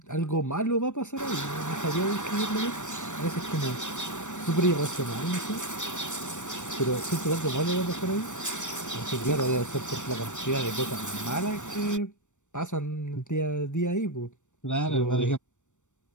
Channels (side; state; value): right; late; 0.85 ms